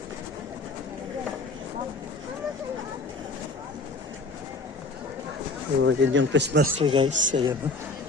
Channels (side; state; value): right; quieter; 3.4 dB